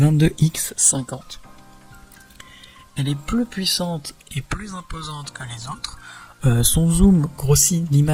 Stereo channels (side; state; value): both; identical; correlation 1.00